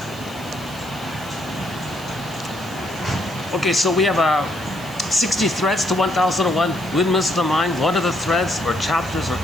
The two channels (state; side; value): noise; right; hiss, 19 dB below the sound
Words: Okay, so we have 60 threads to 1001 Windmills of the Mind. What are the threads or chapters or